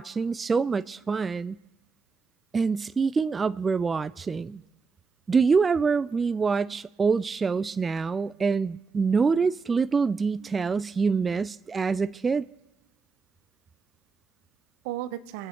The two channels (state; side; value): quieter; left; 4.8 dB